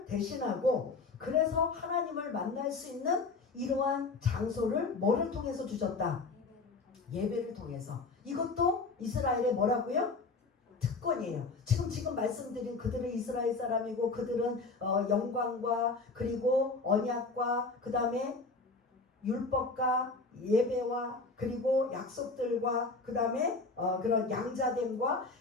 대신하고, 그래서 하나님을 만날 수 있는 이러한 장소를 뭐를 통해서 주셨다? 예배를 통해서. 이것도 이스라엘의 뭐라고요? 특권이에요. 지금 말씀드린 그들은 이스라엘 사람이고 그들은 영광과 그리고 언약과 그 다음에 율법과 예배와 그리고 약속들과 그 다음에 그런 양자됨과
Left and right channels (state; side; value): quieter; right; 3.9 dB